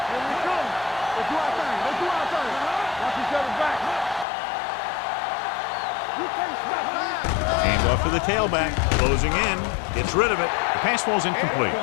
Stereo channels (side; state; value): right; drops out; at 4.2 s